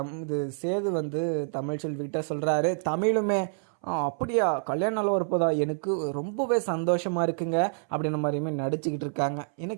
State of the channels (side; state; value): left; silent; 60 dB below the other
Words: இது சேது வந்து தமிழ்ச்செல்விக்கிட்ட சொல்கிறாரு. தமிழுமே அப்படியா, கல்யாண நாள் வரப்போதா, எனக்கு ரொம்பவே சந்தோஷமாக இருக்குங்க அப்படின்ற மாதிரியுமே நடிச்சுக்கிட்டு இருக்காங்க.